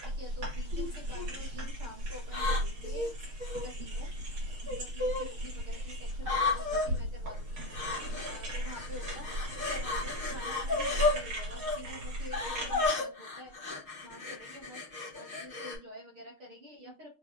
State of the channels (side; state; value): left; late; 6.4 ms